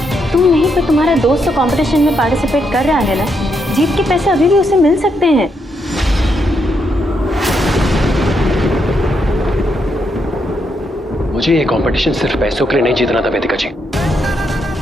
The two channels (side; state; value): both; normal; correlation 0.79